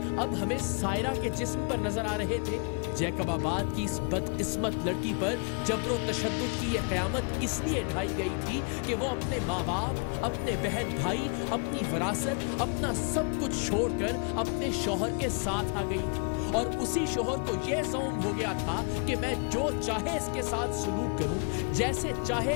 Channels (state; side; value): quieter; right; 37.9 dB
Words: अब हमें सायरा के जिस्म पर नजर आ रहे थे? जैकबाबाद की इस बदकिस्मत लड़की पर जबरो तशद्दुद की यह क़यामत इसलिए ढाई गई थी कि वो अपने माँ बाप, अपने बहन भाई, अपनी विरासत, अपना सब कुछ छोड़कर अपने शौहर के साथ आ गई थी। और उसी शौहर को यह ज़ौम हो गया था कि मैं जो चाहे इसके साथ सलूक करूं, जैसे चाहे